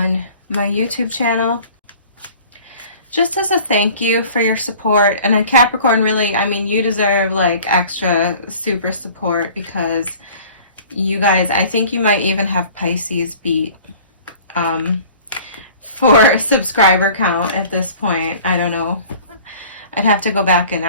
my YouTube channel. Just as a thank you for your support. And then Capricorn, really, I mean, you deserve like extra super support because you guys, I think you might even have Pisces beat for subscriber count at this point. I don't know. I'd have to go back and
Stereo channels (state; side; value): inverted; both; correlation -0.46